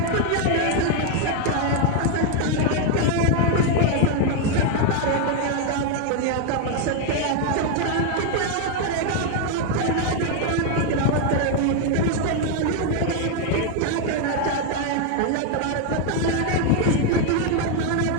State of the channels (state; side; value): different; both; correlation 0.01